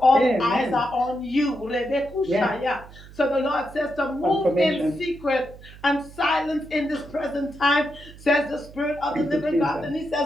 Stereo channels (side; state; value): right; noise; hum, 19 dB below the sound